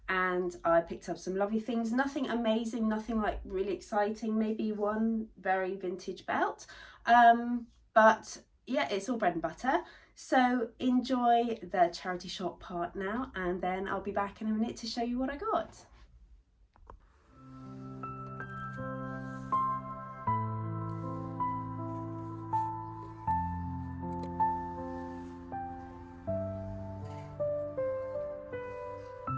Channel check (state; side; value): identical; both; correlation 1.00